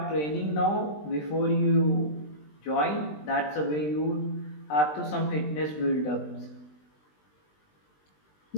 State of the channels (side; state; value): right; late; 20 ms